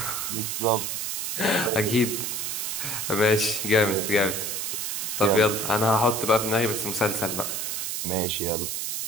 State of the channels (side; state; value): right; noise; hiss, 2 dB below the sound